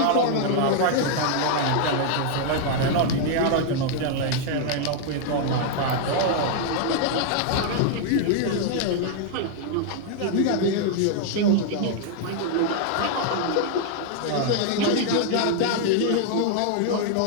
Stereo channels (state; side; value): different; both; correlation 0.00